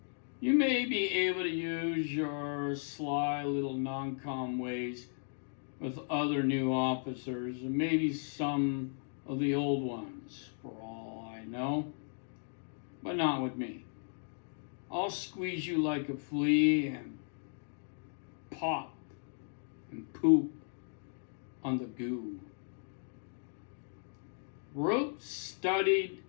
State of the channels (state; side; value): silent; right; digital silence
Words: You may be able to use your sly little non-com ways with other new officers and maybe some of the old ones, for all I know, but not with me. I'll squeeze you like a flea and pop and poop on the goo. Rope studied